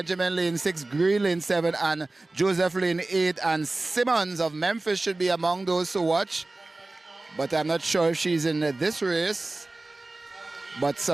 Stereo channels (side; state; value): left; quieter; 3.0 dB